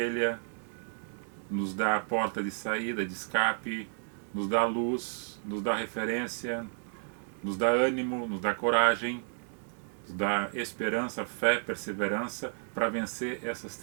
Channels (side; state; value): left; silent; digital silence